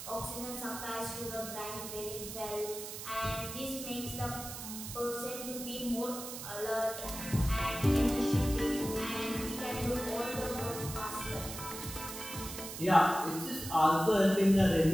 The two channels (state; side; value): noise; right; hiss, 9 dB below the sound